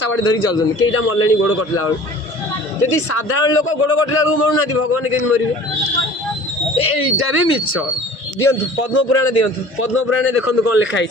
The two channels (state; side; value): normal; both; correlation 0.45